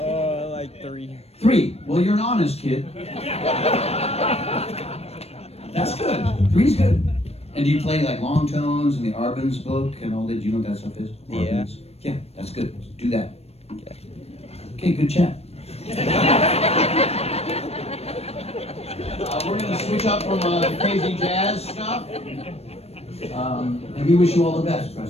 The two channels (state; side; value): late; right; 0.30 ms